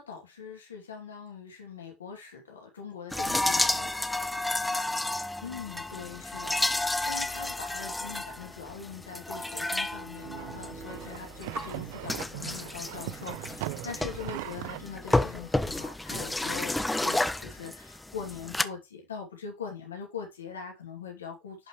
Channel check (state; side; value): normal; both; correlation 0.81